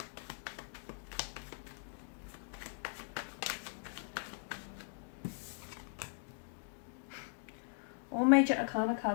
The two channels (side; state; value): right; silent; digital silence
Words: All major arcana